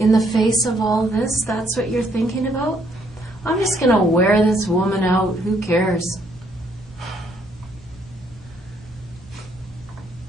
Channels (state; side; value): normal; both; correlation 0.69